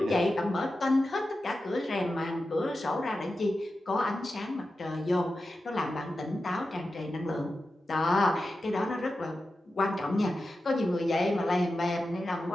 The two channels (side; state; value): both; normal; correlation 0.92